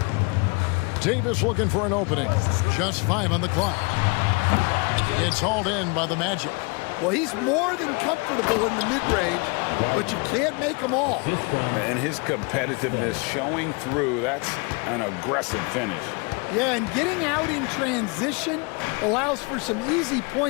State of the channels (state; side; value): quieter; right; 30.7 dB